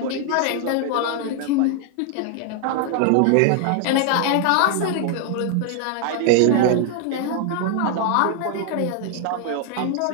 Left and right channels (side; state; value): both; different; correlation 0.00